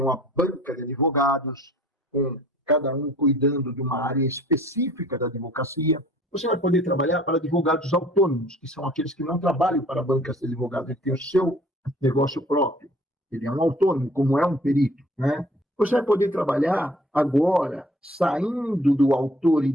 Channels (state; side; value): normal; both; correlation 0.53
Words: uma banca de advogados, com cada um cuidando de uma área específica da advocacia. Você vai poder trabalhar para advogados autônomos, que são aqueles que não trabalham para bancas de advogados, ele tem o seu negócio próprio. Ele é um autônomo, como é um perito, né? Você vai poder trabalhar agora, saindo do autor e